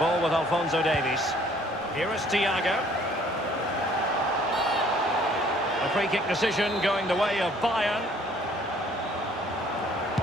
with Alphonso Davies. Here is Thiago. A free kick decision going the way of Bayern.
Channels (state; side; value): normal; both; correlation 0.58